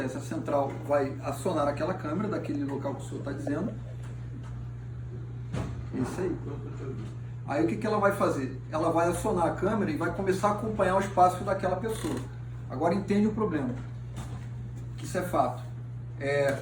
A central vai acionar aquela câmera daquele local que o senhor está dizendo. Isso aí. Aí o que ela vai fazer? Ela vai acionar a câmera e vai começar a acompanhar os passos daquela pessoa. Agora entende o problema, que isso é fato.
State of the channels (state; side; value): identical; both; correlation 1.00